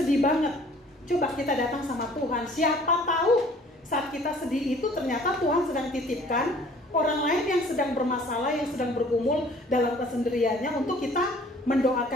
banget. Coba kita datang sama Tuhan, siapa tahu saat kita sedih itu ternyata Tuhan sedang titipkan orang lain yang sedang bermasalah, yang sedang bergumul dalam kesendiriannya, untuk kita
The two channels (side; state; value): both; normal; correlation 0.53